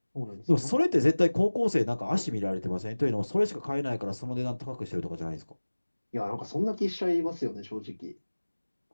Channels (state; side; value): inverted; both; correlation -1.00